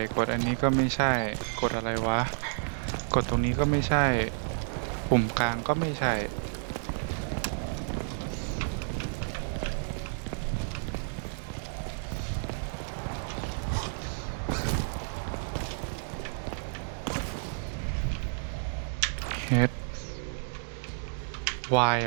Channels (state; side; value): silent; left; digital silence